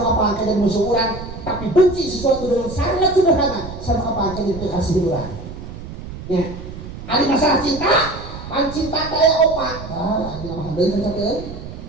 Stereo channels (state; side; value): noise; right; rumble, 11 dB below the sound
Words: apa akan jadi musuh orang tapi benci sesuatu dengan sangat sederhana sama apa akan jadi kasih orang ya ada masalah cinta pan cinta kaya opat ini nama handai kan sakit